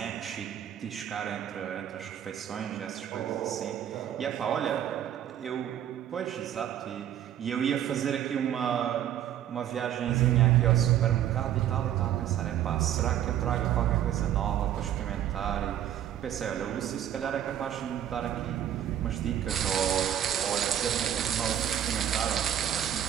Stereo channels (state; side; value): quieter; left; 10.8 dB